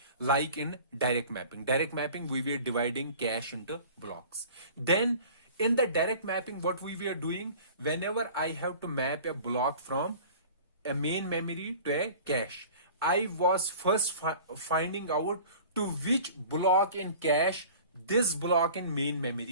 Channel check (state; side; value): inverted; both; correlation -0.44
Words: like in direct mapping. Direct mapping, we were dividing cache into blocks. Then in the direct mapping, what we were doing, whenever I have to map a block from a main memory to a cache, I was first finding out to which block in cache this block in main